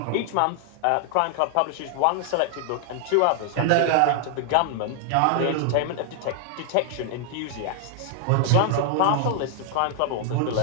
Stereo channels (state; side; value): different; both; correlation 0.00